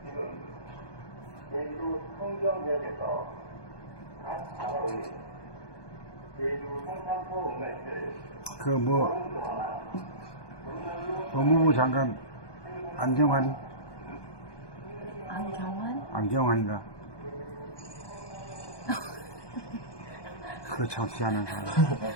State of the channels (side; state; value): right; late; 1.2 ms